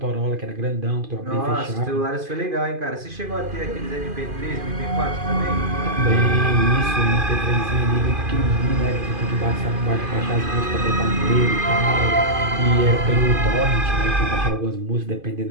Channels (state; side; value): late; left; 2.5 ms